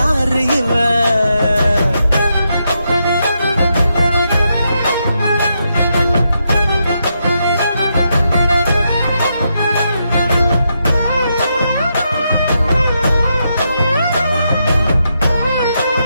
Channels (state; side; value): inverted; both; correlation -0.82